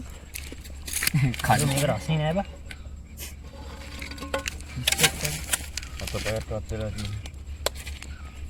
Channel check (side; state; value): both; identical; correlation 1.00